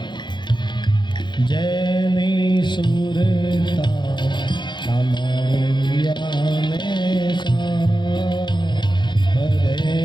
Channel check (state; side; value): late; right; 0.22 ms